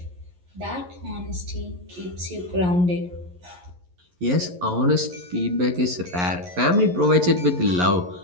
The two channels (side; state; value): left; late; 11 ms